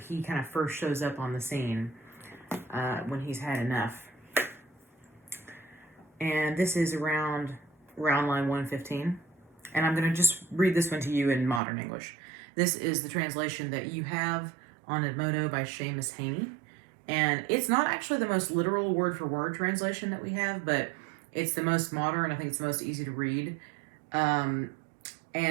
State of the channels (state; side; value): drops out; left; at 11.6 s